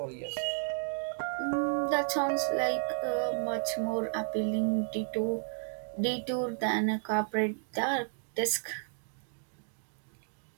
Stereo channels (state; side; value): silent; left; digital silence